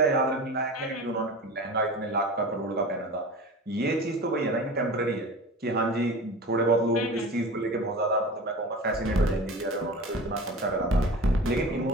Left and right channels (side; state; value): both; normal; correlation 0.34